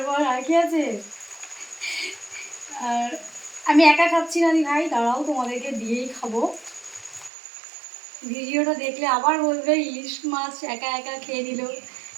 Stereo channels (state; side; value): drops out; left; at 7.3 s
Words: আর কি আছে, আর আমি একা খাচ্ছি না দি ভাই, দাঁড়াও তোমাদেরকে দিয়েই খাবো। ভিডিওটা দেখলে আবার বলবে ইলিশ মাছ একা একা খেয়ে নিল,